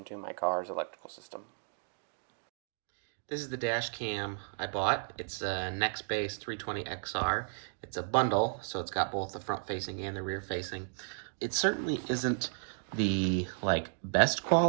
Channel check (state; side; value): silent; left; digital silence